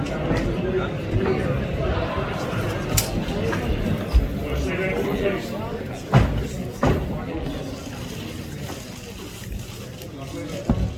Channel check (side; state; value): both; identical; correlation 1.00